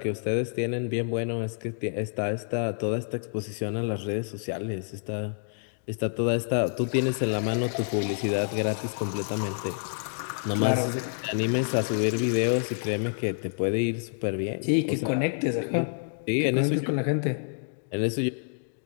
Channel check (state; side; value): silent; right; digital silence